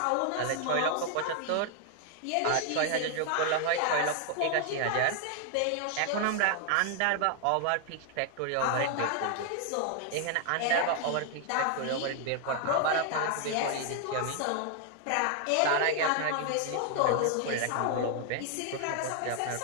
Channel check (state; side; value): different; both; correlation 0.00